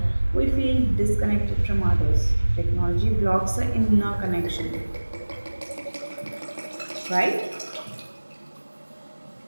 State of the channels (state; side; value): inverted; both; correlation -1.00